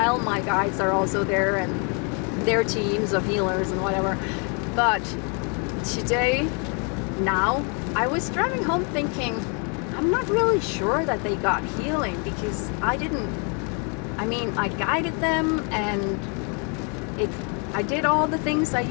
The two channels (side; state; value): right; quieter; 36.6 dB